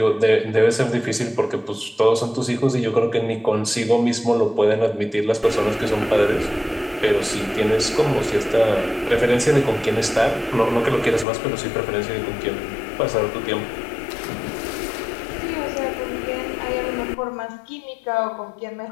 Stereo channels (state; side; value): drops out; right; at 11.2 s